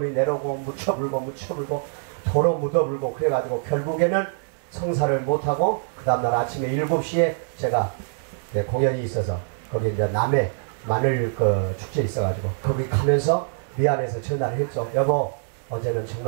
내려오고 묻혀불고 도로 묻어불고 그래가지고 결국에는 성사를 못하고 그 다음날 아침에 7시에 제가 공연이 있어서 거기 이제 남해 마늘 축제 있어가지고 거기 가면서 미안해서 전화를 했죠. 여보 어제는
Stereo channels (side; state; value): left; silent; digital silence